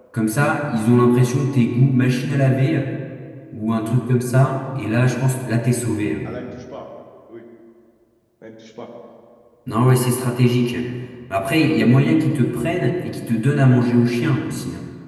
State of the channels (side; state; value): both; identical; correlation 1.00